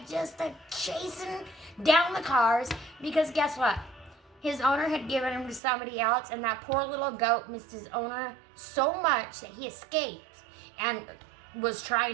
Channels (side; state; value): left; drops out; at 5.6 s